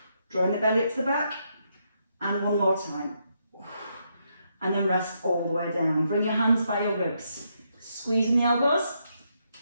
Drawing the belly up to the back, and 1 more time. And then rest all the way down. Bring your hands by your ribs. Squeezing the elbows.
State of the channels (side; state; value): both; inverted; correlation -0.78